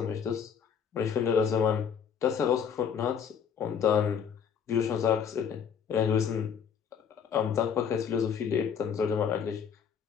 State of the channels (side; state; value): right; quieter; 7.3 dB